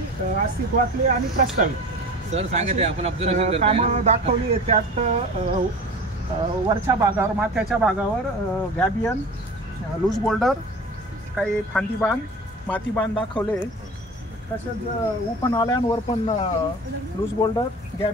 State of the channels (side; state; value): both; normal; correlation 0.36